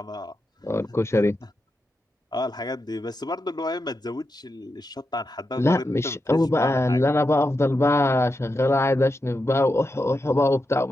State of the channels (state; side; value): normal; both; correlation 0.87